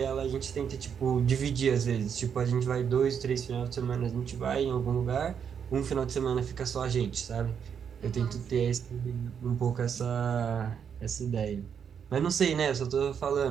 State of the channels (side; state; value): left; quieter; 7.5 dB